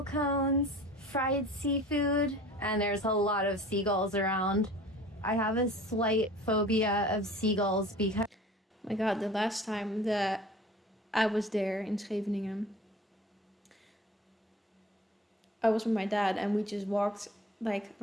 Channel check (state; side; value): normal; both; correlation 0.44